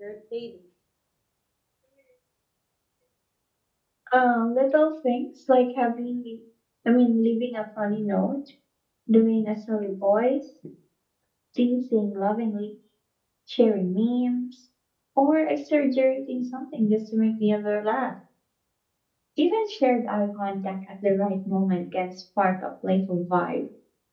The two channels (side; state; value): both; identical; correlation 1.00